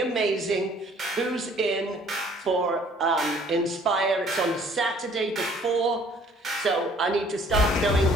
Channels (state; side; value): normal; both; correlation 0.57